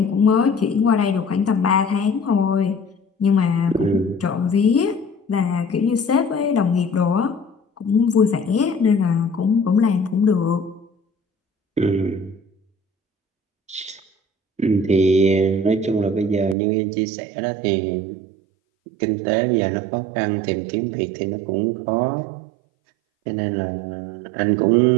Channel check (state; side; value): drops out; left; at 16.6 s